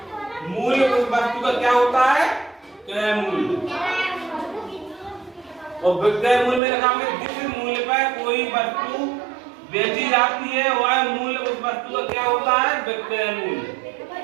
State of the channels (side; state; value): left; drops out; at 6.6 s